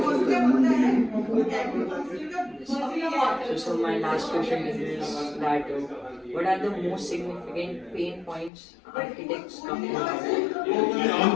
of the human being will become better. So my last question is that what are the most significant pain points architects come across? Pain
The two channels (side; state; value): right; drops out; at 8.5 s